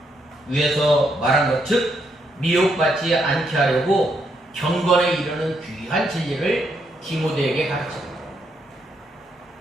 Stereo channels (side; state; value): both; normal; correlation 0.77